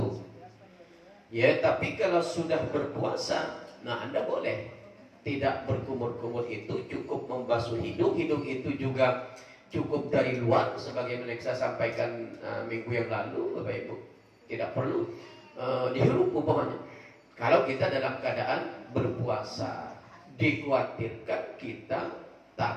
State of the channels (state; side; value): identical; both; correlation 1.00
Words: Ya, tapi kalau sudah berpuasa, nah Anda boleh tidak berkumur-kumur itu, cukup membasuh hidung. Hidung itu juga cukup dari luar, sebagaimana saya sampaikan minggu yang lalu, Bapak Ibu. Tidak perlu dihirup umpamanya. Kalau kita dalam keadaan berpuasa, dikhawatirkan kita